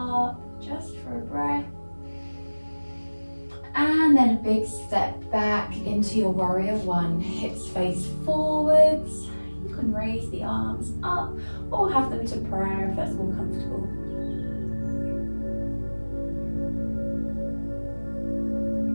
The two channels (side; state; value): both; inverted; correlation -1.00